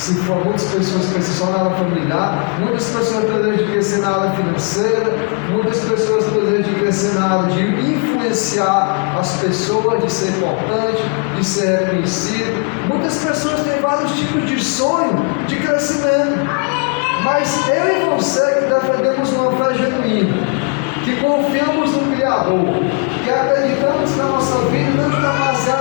for muitas pessoas que crescem só na área familiar, muitas pessoas têm o desejo de crescer na área financeira, muitas pessoas têm o desejo de crescer na área de influenciar as pessoas, de ser importante, de ser reconhecido. Muitas pessoas têm vários tipos de sonho de crescimento. Mas eu e você que defendemos uma fé genuína, que confiamos no Criador, que acreditamos que a nossa vida não está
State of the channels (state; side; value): quieter; right; 36.3 dB